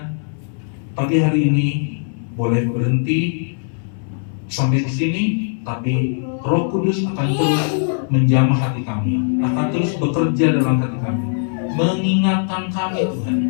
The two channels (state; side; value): silent; right; 63 dB below the other